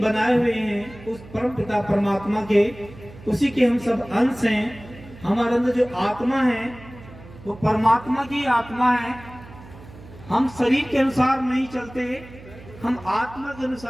हुए हैं, उस परम पिता परमात्मा के, उसी के हम सब अंश हैं। हमारे अंदर जो आत्मा है वो परमात्मा की आत्मा है। हम शरीर के अनुसार नहीं चलते, हम आत्मा के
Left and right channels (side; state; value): right; noise; hum, 19 dB below the sound